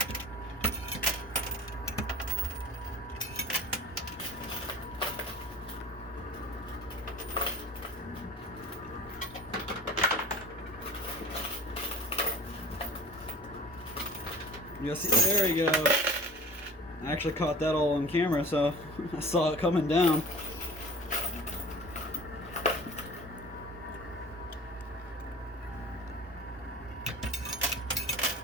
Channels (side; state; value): both; normal; correlation 0.41